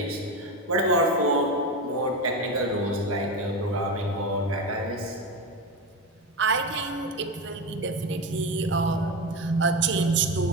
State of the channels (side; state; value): both; normal; correlation 0.19